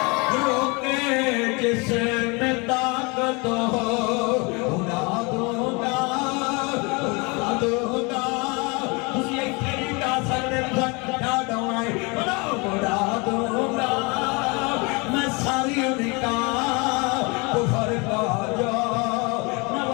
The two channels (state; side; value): quieter; right; 28.7 dB